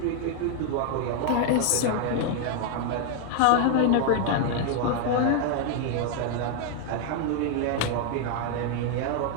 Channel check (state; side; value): different; both; correlation 0.00